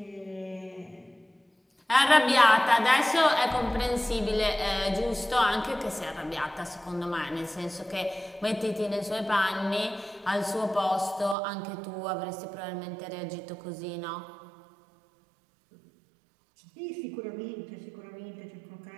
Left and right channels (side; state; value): left; drops out; at 11.4 s